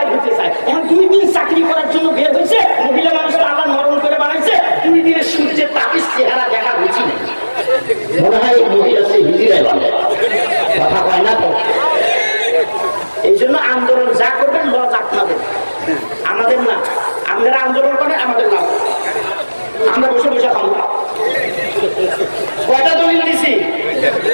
হতে চায়। এখন 2 দিন চাকরি করার জন্য বের হয়েছে, মহিলা মানুষটা আল্লাহ নরম করে বানাইছে, 2 দিনের সূর্যের তাপিস চেহারা দেখা বুঝি নেই, মনে হয় এই মহিলা সে হিজিরায় বলে, কথা কয় না তো। এই জন্য আন্দোলন যা করবেন লজ আপনাদের, আমাদের না। আপনারা আন্দোলন করেন, আমাদের না, আমরা বসে বসে খাবো। কয়টা দলিল দিছি?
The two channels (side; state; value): both; inverted; correlation -1.00